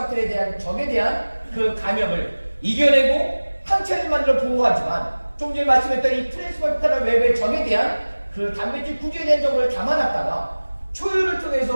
대한 적에 대한 그 감염을 이겨내고 항체를 만들어 보호하지만 좀 전에 말씀했던 이 트랜스퍼라는 외부의 적에 대한 그 단백질 구조에 대한 적을 담아놨다가 초유를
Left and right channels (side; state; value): both; inverted; correlation -1.00